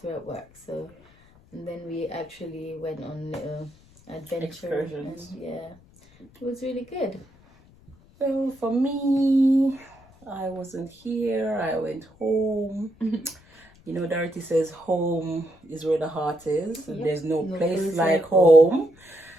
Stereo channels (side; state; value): left; noise; rumble, 27 dB below the sound